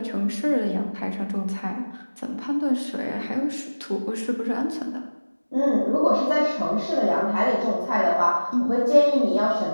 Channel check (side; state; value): both; inverted; correlation -1.00